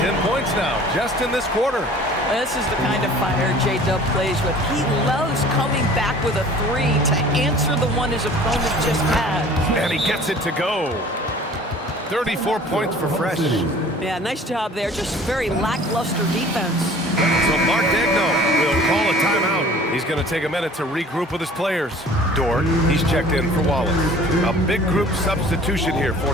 10 points now, just in this quarter. This is the kind of fire J-Dub plays with. He loves coming back with a 3 to answer the one his opponent just had. And he gets it to go. 34 points for Fresh. Yeah, nice job there. Just very lackluster defense. So Mark Degno will call a timeout. He's going to take a minute to regroup with his players. Dort, he's checked in for Wallace. A big group substitution here for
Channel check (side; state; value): both; normal; correlation 0.47